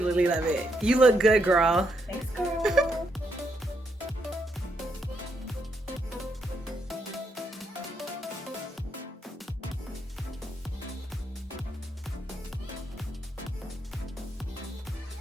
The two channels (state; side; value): normal; both; correlation 0.78